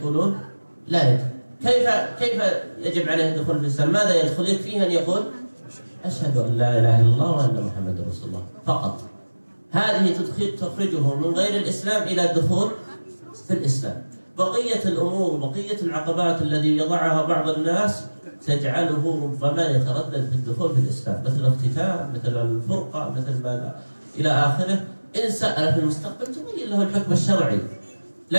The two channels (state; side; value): inverted; both; correlation -1.00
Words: لا يجب. كيف يجب عليه الدخول في الإسلام؟ ماذا يدخل؟ يكفيه أن يقول أشهد أن لا إله إلا الله وأن محمد رسول الله فقط. هذه تخرجه من غير الإسلام إلى الدخول في الإسلام. بقية الأمور وبقية العقبات التي يضعها بعض الناس تجعله ربما يتردد في الدخول في الإسلام، مثل الاختتام، مثل الفرقة، مثل ما إلى آخره. إن سأل في المستقبل تبين له الحكم الشرعي،